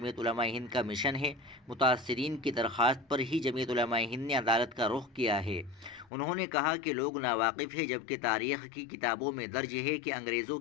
علماء ہند کا مشن ہے۔ متاثرین کی درخواست پر ہی جمعیت علماء ہند نے عدالت کا رخ کیا ہے۔ انہوں نے کہا کہ لوگ ناواقف ہیں جبکہ تاریخ کی کتابوں میں درج ہے کہ انگریزوں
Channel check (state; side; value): drops out; right; at 6.1 s